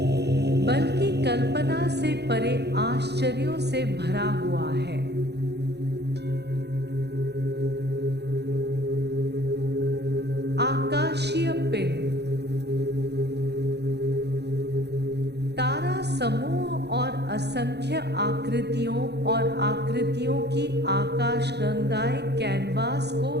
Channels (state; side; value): late; left; 0.49 ms